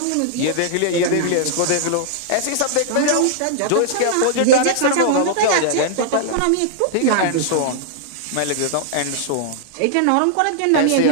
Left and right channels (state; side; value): different; both; correlation -0.01